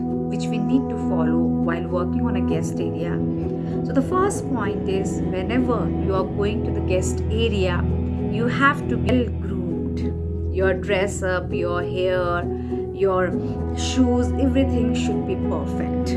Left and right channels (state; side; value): identical; both; correlation 1.00